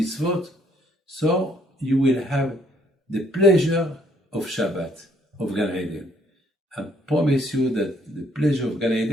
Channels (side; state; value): both; normal; correlation 0.66